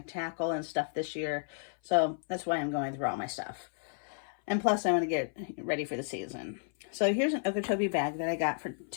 and stuff this year. So that's why I'm going through all my stuff. And plus I want to get ready for the season. So here's an Okeechobee bag that I got for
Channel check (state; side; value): silent; right; 56 dB below the other